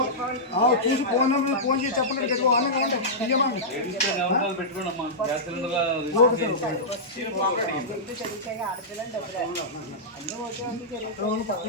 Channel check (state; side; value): normal; both; correlation -0.12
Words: నెంబర్ ఫోన్ చేసి చెప్పండి.